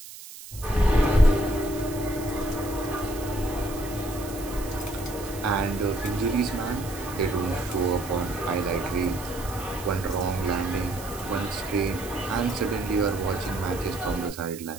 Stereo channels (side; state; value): right; noise; hiss, 14 dB below the sound